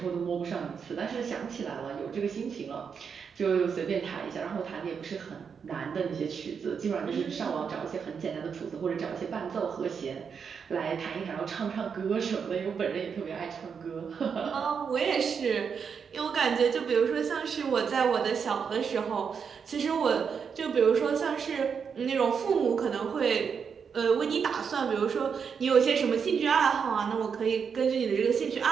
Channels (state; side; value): quieter; left; 6.5 dB